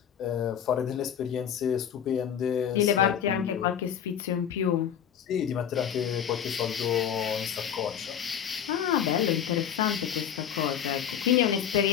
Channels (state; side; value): quieter; right; 9.1 dB